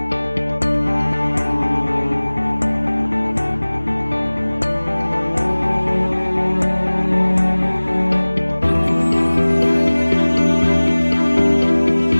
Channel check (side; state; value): both; inverted; correlation -1.00